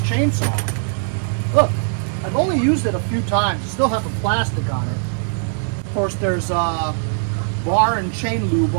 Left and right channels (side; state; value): left; silent; 66 dB below the other